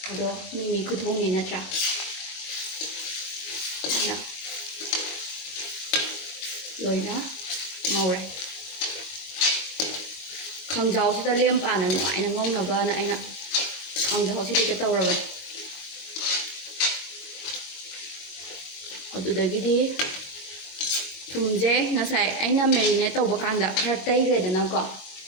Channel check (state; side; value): late; right; 22 ms